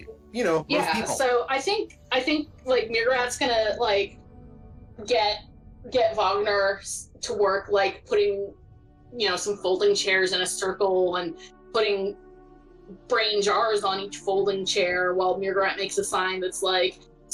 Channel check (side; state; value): both; identical; correlation 1.00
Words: most people. So I think like mrr'gr'rat's gonna, like, get Wagner to work, like, putting, some folding chairs in a circle and putting brain jars on each folding chair, while mrr'grr'rat makes a sign that's like,